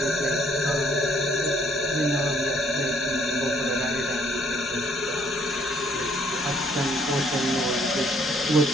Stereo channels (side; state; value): left; noise; hum, 27 dB below the sound